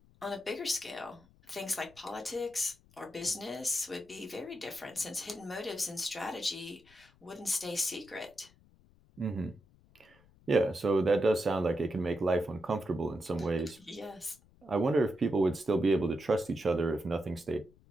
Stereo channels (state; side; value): noise; left; rumble, 28 dB below the sound